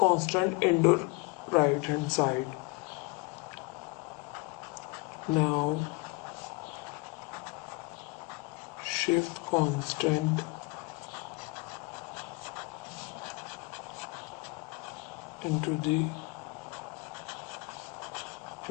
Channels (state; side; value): quieter; right; 26.2 dB